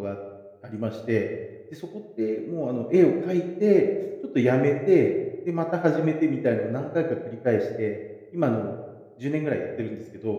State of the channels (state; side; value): identical; both; correlation 1.00